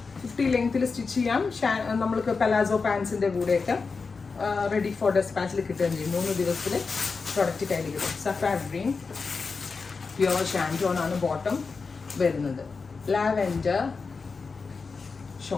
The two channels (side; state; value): right; quieter; 4.7 dB